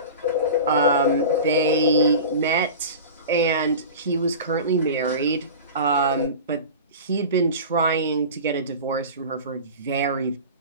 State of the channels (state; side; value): inverted; both; correlation -0.33